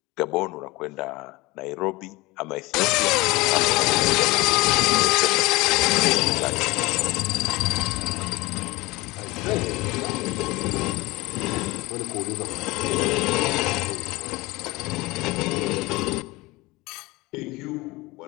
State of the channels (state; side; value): quieter; right; 22.0 dB